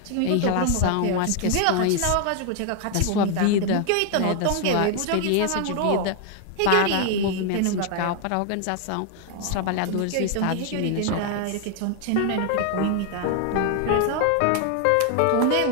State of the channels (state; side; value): different; both; correlation 0.00